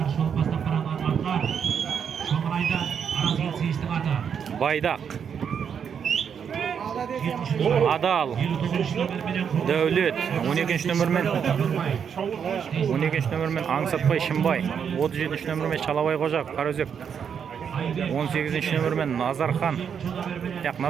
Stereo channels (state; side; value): quieter; left; 7.4 dB